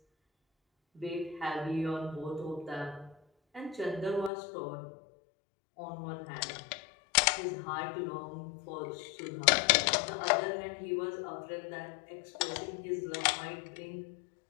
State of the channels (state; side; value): drops out; right; at 4.3 s